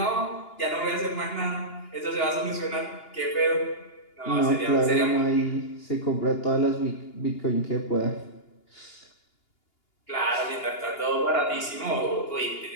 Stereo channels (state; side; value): late; right; 2.8 ms